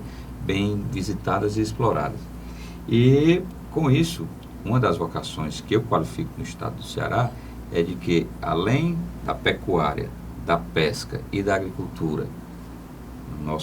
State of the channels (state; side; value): identical; both; correlation 1.00